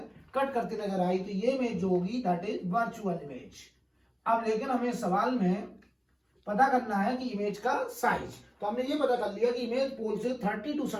कट करती नजर आई, तो ये इमेज जो होगी दैट इज वर्चुअल इमेज। अब लेकिन हमें सवाल में पता करना है कि इमेज का साइज, तो हमने ये पता कर लिया कि इमेज पोल से 32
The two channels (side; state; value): both; identical; correlation 1.00